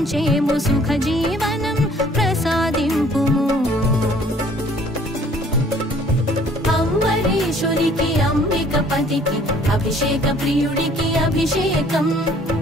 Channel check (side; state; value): both; normal; correlation 0.57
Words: సుఖ జీవనం ప్రసాదింపుము అంబరీషునికి అంబికపతికి అభిషేక ప్రియుడికి అభిషేకం